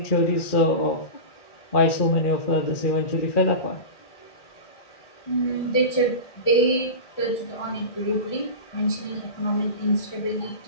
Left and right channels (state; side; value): late; right; 1.8 ms